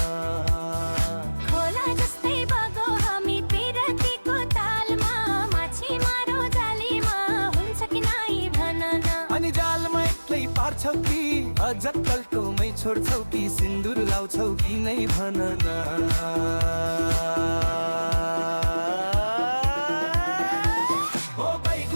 खोला जस्तै बगौ हामी पिरतीको तालमा माछी मारो जालीमा हुन्छ कि नाइ भन न अनि जालमा एक्लै पार्छौ कि अझ कल्टोमै छोड्छौ कि सिन्दुर लाउँछौ कि नै भन न ओ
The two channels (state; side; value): inverted; both; correlation -1.00